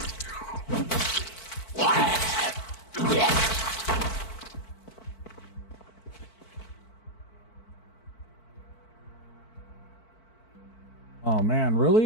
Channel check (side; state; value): right; late; 4.5 ms